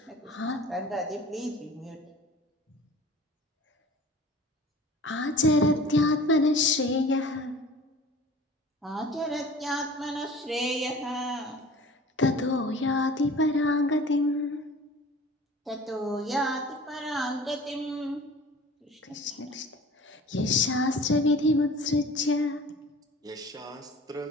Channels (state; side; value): normal; both; correlation 0.43